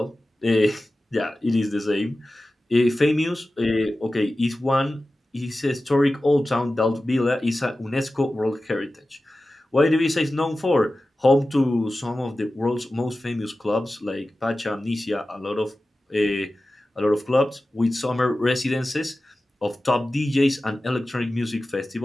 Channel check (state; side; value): normal; both; correlation 0.95